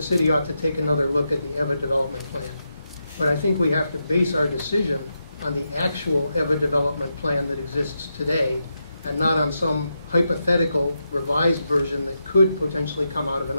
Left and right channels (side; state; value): both; inverted; correlation -0.85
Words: city ought to take another look at the EVA development plan, but I think we have to base our decision on the actual EVA development plan that exists today and not on some hypothetical revised version that could potentially come out of an